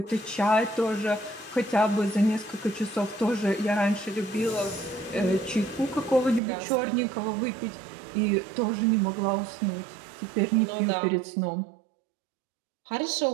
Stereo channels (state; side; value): drops out; left; at 6.4 s